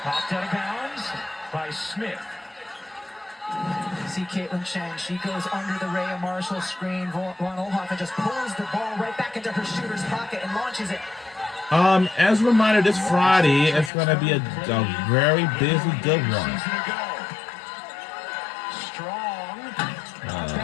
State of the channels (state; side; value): drops out; right; at 13.9 s